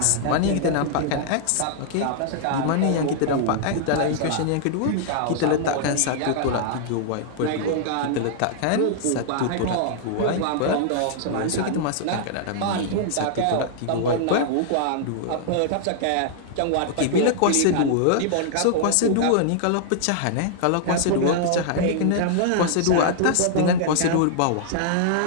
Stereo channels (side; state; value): both; different; correlation -0.01